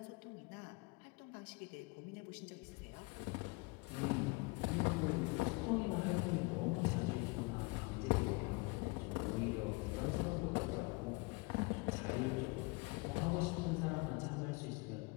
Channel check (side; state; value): right; quieter; 26.9 dB